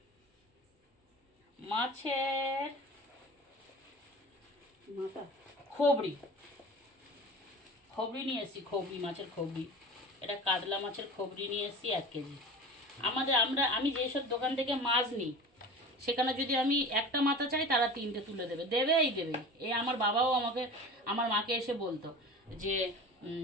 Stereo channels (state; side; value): normal; both; correlation 0.36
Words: মাছের খবরি নিয়ে এসেছি, মাছের খবরি। এটা কাতলা মাছের খবরি নিয়ে এসেছি 1 কেজি। আমি যেসব দোকান থেকে মাছ নিই সেখানে যদি আমি একটা মাথা চাই তারা 3টে তুলে দেবে। এই আমার বাবাও আমার মাকে এসে বলতো যে